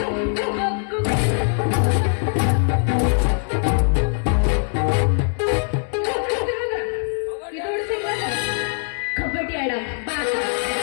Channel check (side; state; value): right; silent; 57 dB below the other